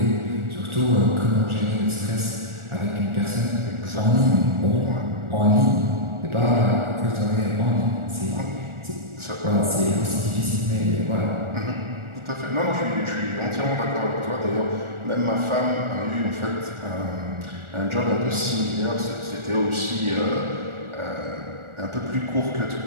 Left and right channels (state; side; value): late; left; 1.4 ms